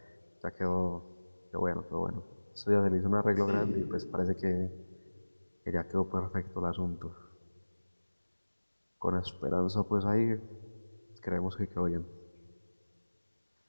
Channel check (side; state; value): both; inverted; correlation -1.00